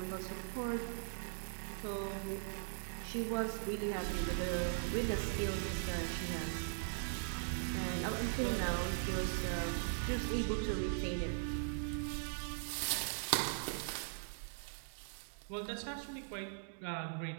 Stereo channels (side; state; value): left; silent; digital silence